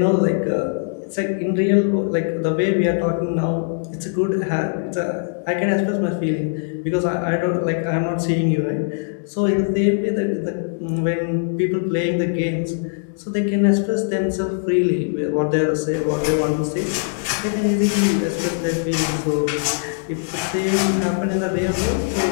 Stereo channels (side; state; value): right; silent; digital silence